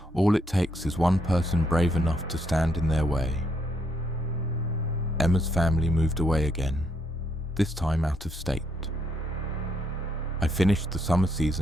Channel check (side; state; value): both; normal; correlation 0.73